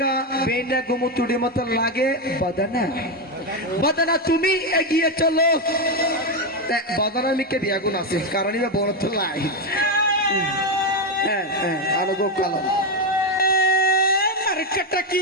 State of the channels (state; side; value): normal; both; correlation 0.08